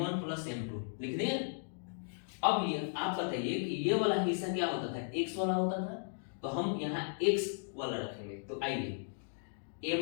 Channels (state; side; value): silent; right; digital silence